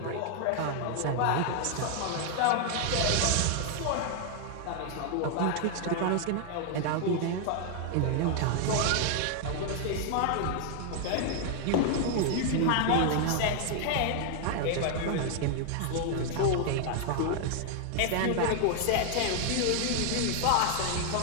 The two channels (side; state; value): both; different; correlation 0.00